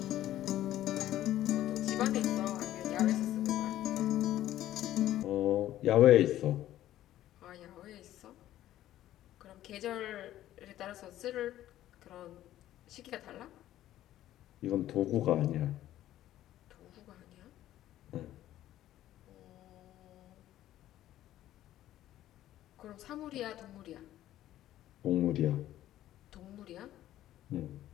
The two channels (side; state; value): right; quieter; 13.4 dB